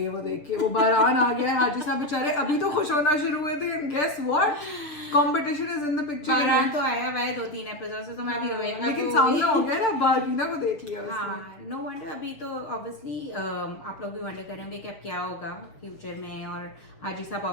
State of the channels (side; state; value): right; late; 6.7 ms